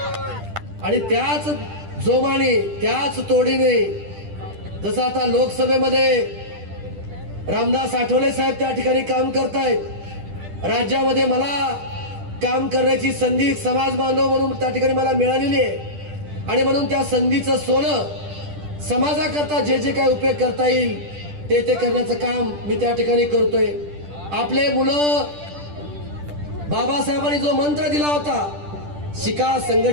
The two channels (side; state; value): left; late; 10 ms